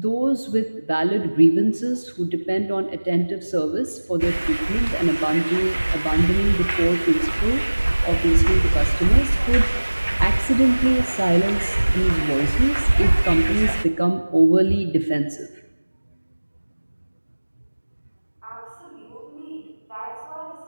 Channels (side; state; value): both; inverted; correlation -1.00